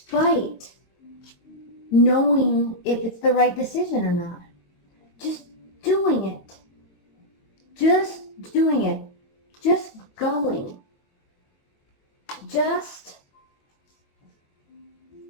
knowing if it's the right decision or not. Just doing it. Just doing it. Just going. Just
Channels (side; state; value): right; late; 22 ms